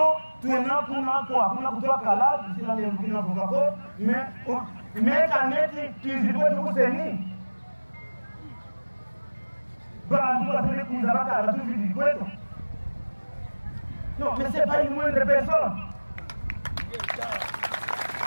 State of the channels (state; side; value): inverted; both; correlation -1.00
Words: tuena kuna kutoa kala Sila mbina kukako Mais kaneti tuizidwe tukuseni Bandu wasele kuzabaka la tuizidwe Non, mais c'est pas une moindre personne.